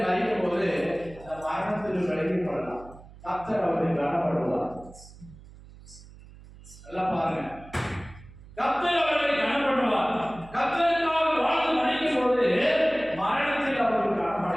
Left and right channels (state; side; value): noise; right; hum, 20 dB below the sound